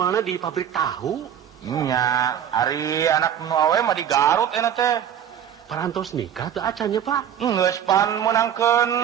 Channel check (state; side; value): quieter; left; 9.4 dB